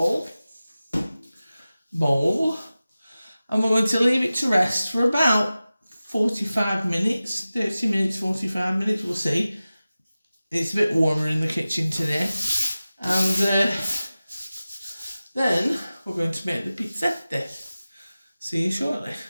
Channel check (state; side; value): inverted; both; correlation -0.96